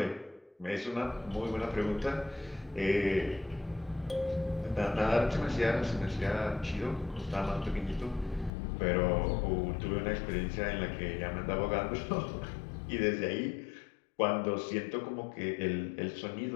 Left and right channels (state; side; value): drops out; right; at 8.5 s